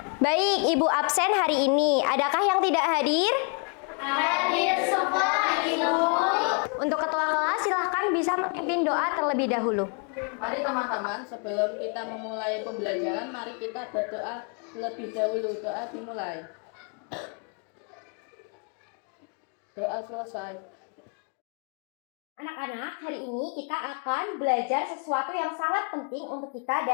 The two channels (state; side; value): quieter; right; 39.6 dB